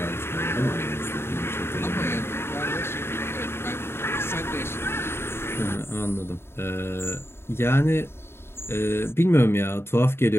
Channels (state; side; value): late; right; 0.12 ms